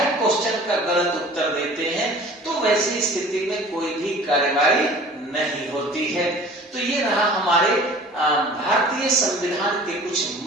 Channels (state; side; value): normal; both; correlation 0.45